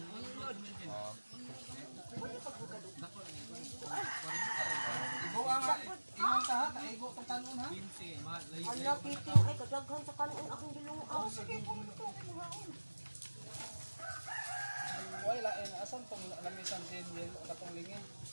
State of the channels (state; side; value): inverted; both; correlation -1.00